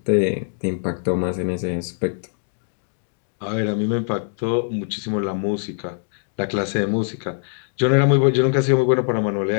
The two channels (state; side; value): silent; right; 62 dB below the other